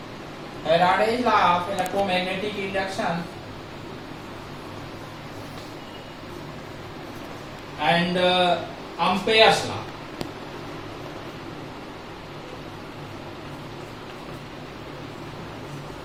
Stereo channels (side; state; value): both; identical; correlation 1.00